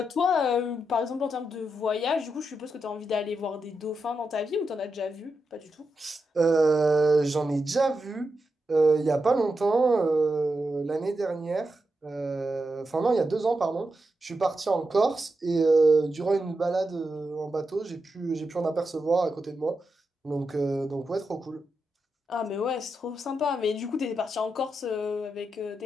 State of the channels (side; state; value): both; normal; correlation 0.87